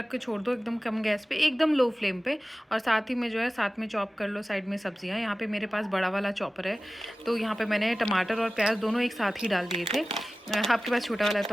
के छोड़ दो एकदम कम गैस पे, एकदम लो फ्लेम पे। और साथ ही में जो है साथ में चॉप कर लो साइड में सब्जियां। यहाँ पे मेरे पास बड़ा वाला चॉपर है, तो यहाँ पे मैंने टमाटर और प्याज दोनों एक साथ ही डाल दिए थे। आपके पास छोटा वाला है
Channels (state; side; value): normal; both; correlation 0.96